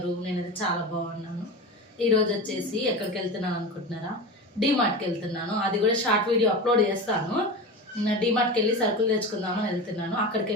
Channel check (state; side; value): normal; both; correlation 0.27